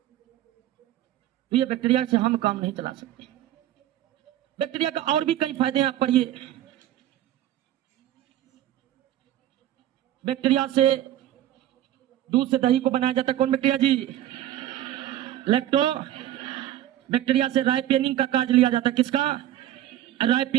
तो ये बैक्टीरिया से हम काम नहीं चला सकते। बैक्टीरिया का और भी कई फायदे हैं, आप पढ़िए। बैक्टीरिया से दूध से दही को बनाया जाता है। कौन बैक्टीरिया जी? लैक्टो। बैक्टीरिया से राइपेनिंग का कार्य लिया जाता है। किसका?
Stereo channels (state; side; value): quieter; left; 12.8 dB